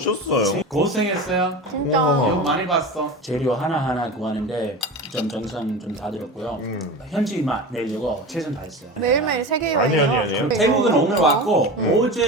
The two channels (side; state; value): both; normal; correlation 0.29